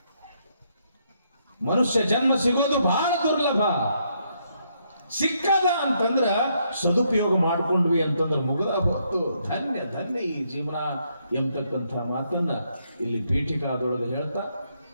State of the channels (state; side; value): inverted; both; correlation -0.75